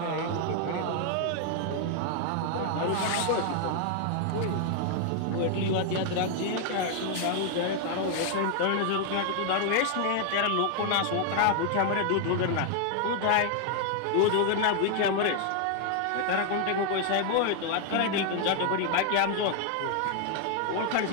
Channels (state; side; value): different; both; correlation 0.00